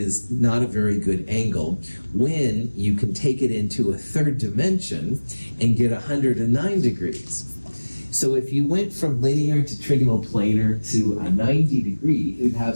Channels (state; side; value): inverted; both; correlation -1.00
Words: not a very good angle when you can take it into a 3rd dimension and get 109 degrees. So if you went from linear to trigonal planar to a 90 degree, you'd